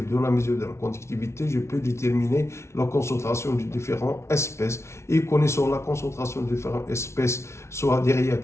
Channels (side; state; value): right; late; 0.13 ms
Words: de la mesure de la conductivité, je peux déterminer la concentration de différentes espèces. Et connaissant la concentration de différentes espèces, soit des